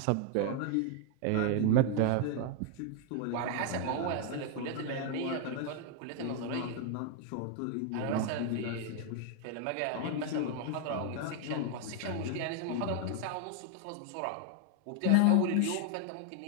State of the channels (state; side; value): different; both; correlation 0.00